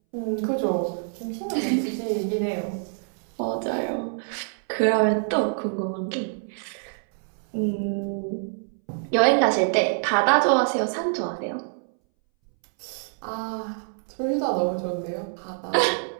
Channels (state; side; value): silent; left; 61 dB below the other